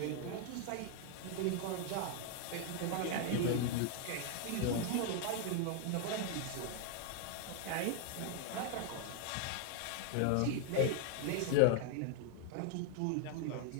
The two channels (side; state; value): both; different; correlation 0.00